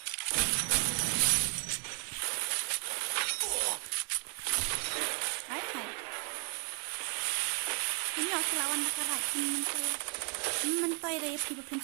Hai. Ini aku lawan nakarat mentoi raya pi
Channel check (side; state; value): left; quieter; 36.8 dB